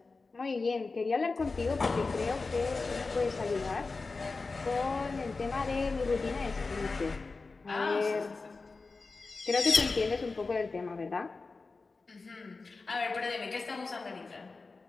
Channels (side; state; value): right; quieter; 4.0 dB